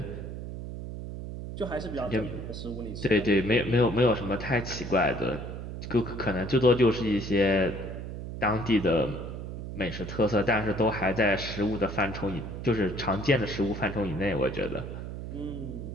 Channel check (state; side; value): noise; right; hum, 8 dB below the sound